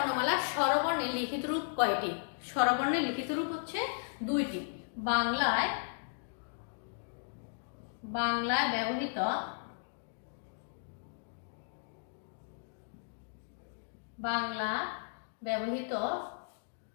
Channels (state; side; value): silent; right; digital silence